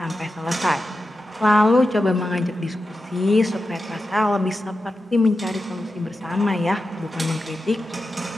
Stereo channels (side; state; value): both; normal; correlation 0.91